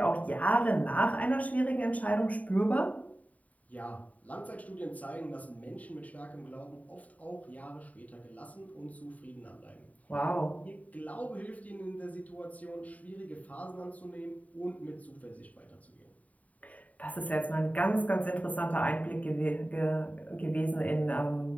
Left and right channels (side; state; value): right; late; 0.071 ms